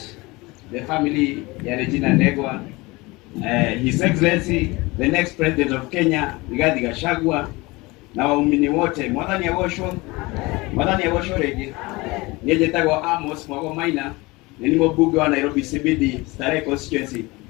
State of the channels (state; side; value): quieter; right; 23.1 dB